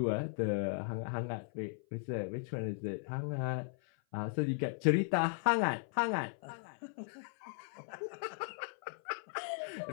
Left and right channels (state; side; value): silent; right; 53 dB below the other